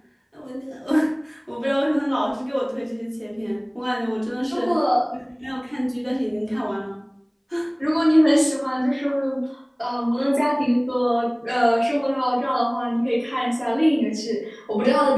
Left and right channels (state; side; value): identical; both; correlation 1.00